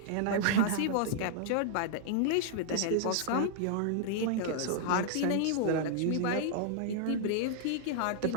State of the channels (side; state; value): both; different; correlation -0.01